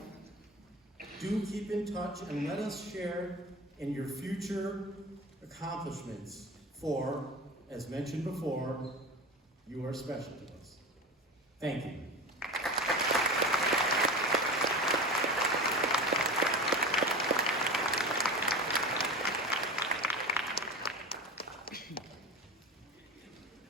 Do keep in touch and let us share in your future accomplishments, for, as mentioned before, you are special to us. Thank you.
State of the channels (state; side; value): normal; both; correlation 0.31